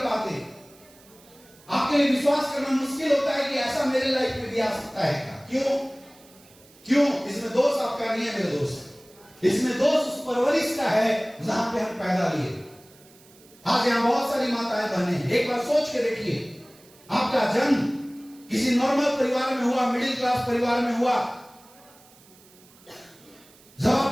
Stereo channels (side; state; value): right; noise; hiss, 26 dB below the sound